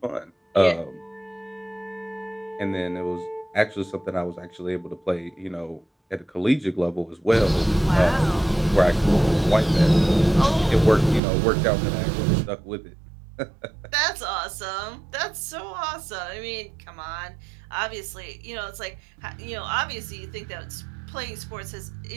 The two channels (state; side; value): drops out; left; at 11.2 s